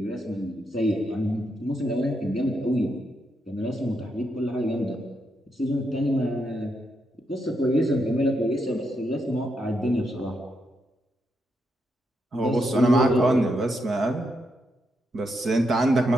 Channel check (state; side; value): normal; both; correlation 0.81